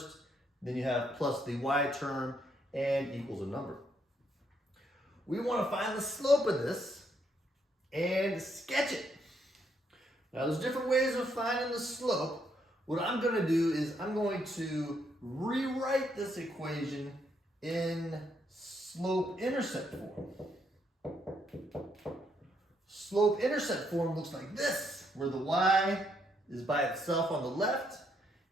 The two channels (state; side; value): normal; both; correlation 0.74